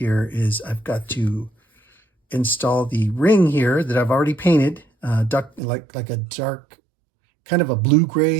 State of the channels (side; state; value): left; drops out; at 5.6 s